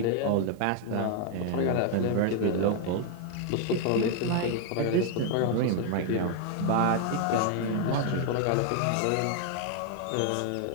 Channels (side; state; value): both; different; correlation 0.00